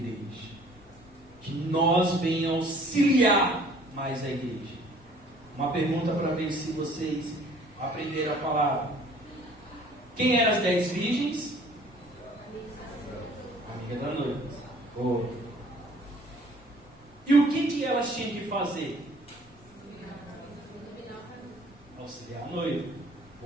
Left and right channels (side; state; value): both; normal; correlation 0.54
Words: Que nós venhamos auxiliar mais a igreja. Uma pergunta para ver se vocês aprenderam a palavra. Quem eram as 10 virgens? Amiga da noiva. Oh. E o que elas tinham que fazer? Auxiliar a noiva.